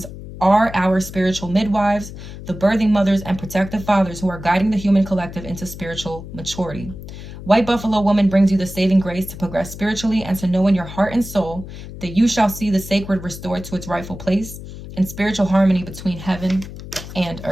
are our spiritual midwives, the birthing mothers and protective fathers who are guiding the human collective into spiritual maturity. White Buffalo woman brings you the saving grace to progress spiritually and to know in your heart and soul that you shall see the sacred restored to its rightful place in spiritual harmony between heaven and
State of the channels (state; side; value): noise; left; hum, 12 dB below the sound